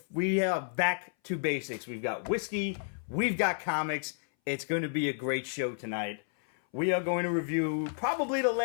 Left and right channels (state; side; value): silent; right; 57 dB below the other